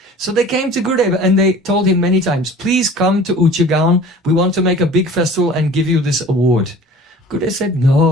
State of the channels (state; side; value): normal; both; correlation 0.44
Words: So they came to Gurudev and they told him many times, please come to Uchagaon. We want to make a big festival and give you this award. Gurudev said,